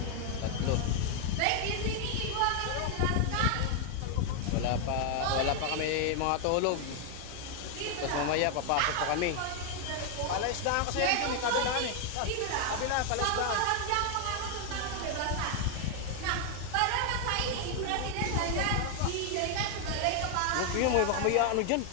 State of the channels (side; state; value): both; different; correlation 0.00